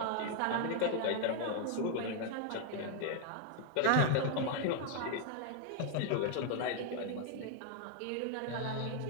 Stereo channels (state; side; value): different; both; correlation 0.00